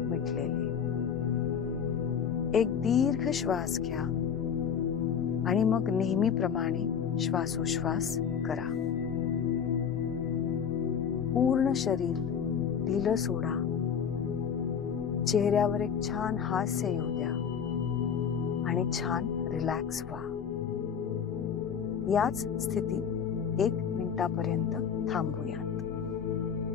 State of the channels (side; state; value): right; quieter; 7.5 dB